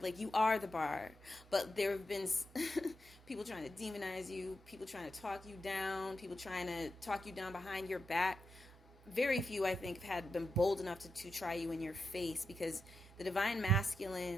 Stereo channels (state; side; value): normal; both; correlation 0.87